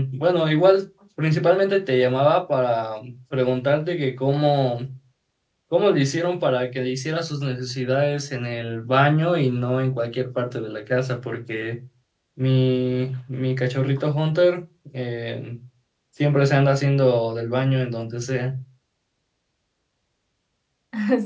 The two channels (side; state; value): both; identical; correlation 1.00